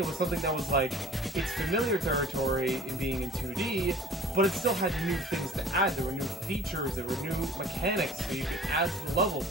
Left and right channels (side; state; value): both; normal; correlation 0.47